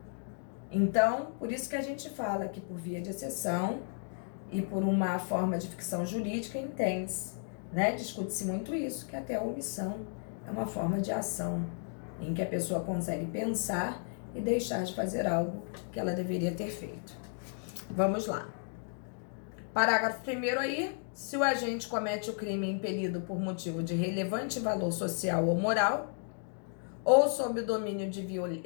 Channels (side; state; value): right; silent; 55 dB below the other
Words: Então, por isso que a gente fala que por via de exceção e por uma forma de ficção jurídica, entende-se, né? Discute-se muito isso, que até a omissão é uma forma de ação em que a pessoa consegue pensar e deixar de fazer algo que ela deveria ter feito. Vamos lá. Parágrafo 1º aí, se o agente comete o crime impelido por motivo de relevante valor social ou moral, ou sob o domínio de